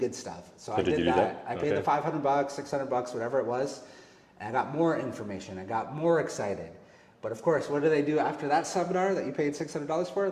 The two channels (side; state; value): both; identical; correlation 1.00